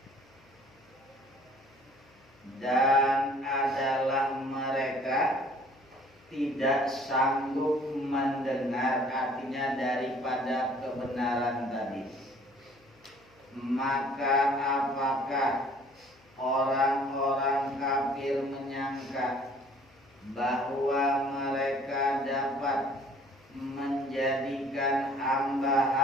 Dan adalah mereka tidak sanggup mendengar, artinya daripada kebenaran tadi. Maka apakah orang-orang kafir menyangka bahwa mereka dapat menjadikan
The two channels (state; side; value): noise; left; hum, 30 dB below the sound